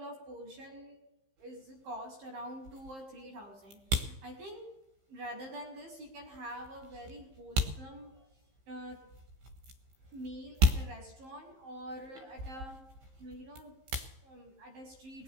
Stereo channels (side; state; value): left; late; 15 ms